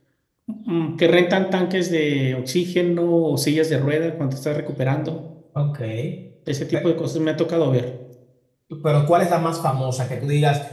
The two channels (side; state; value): both; identical; correlation 1.00